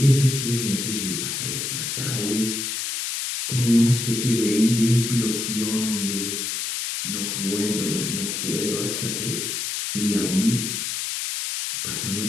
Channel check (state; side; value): noise; left; hiss, 2 dB below the sound